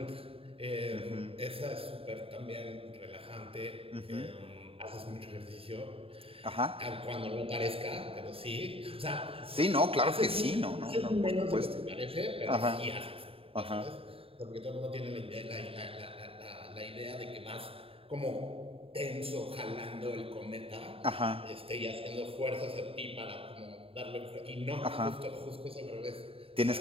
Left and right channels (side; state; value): left; late; 0.27 ms